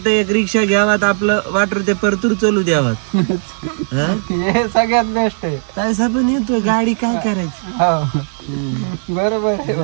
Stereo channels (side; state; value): left; silent; 69 dB below the other